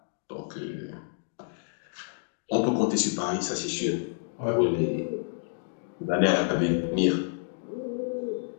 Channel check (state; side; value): silent; right; 58 dB below the other